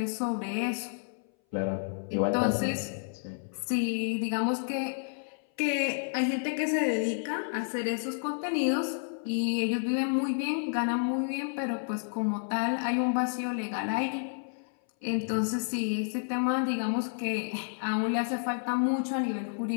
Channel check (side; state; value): right; silent; 58 dB below the other